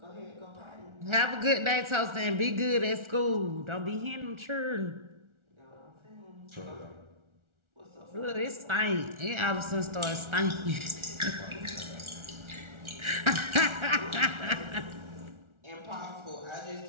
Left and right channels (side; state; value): left; late; 1.4 ms